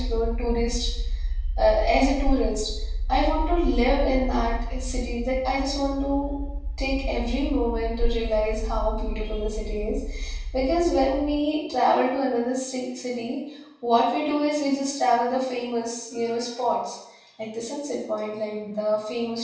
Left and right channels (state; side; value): identical; both; correlation 1.00